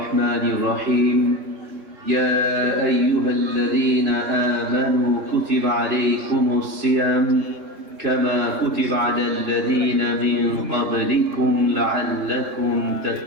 الرحيم. يا أيها الذين آمنوا كتب عليكم الصيام كما كتب على الذين من قبلكم لعلكم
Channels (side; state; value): left; late; 3.3 ms